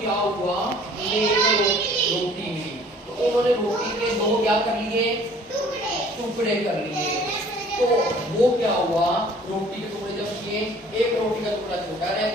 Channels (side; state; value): both; normal; correlation 0.53